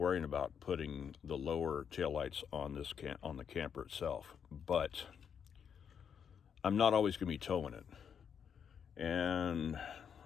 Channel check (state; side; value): quieter; right; 7.5 dB